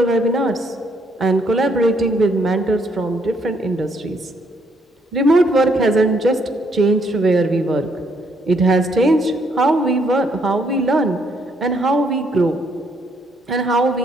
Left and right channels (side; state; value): both; normal; correlation 0.71